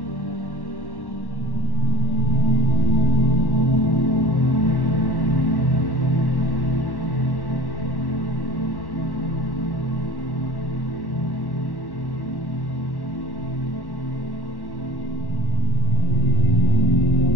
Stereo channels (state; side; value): late; right; 1.1 ms